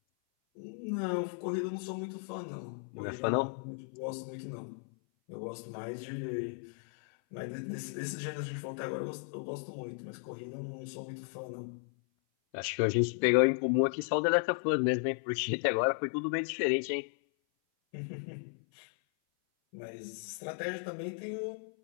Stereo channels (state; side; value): silent; right; 54 dB below the other